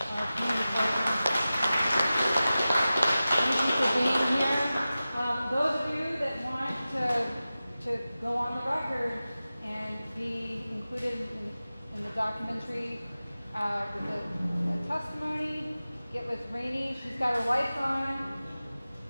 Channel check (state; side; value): inverted; both; correlation -0.95